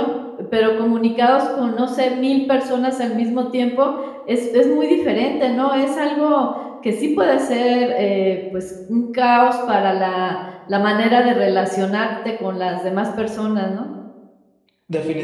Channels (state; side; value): identical; both; correlation 1.00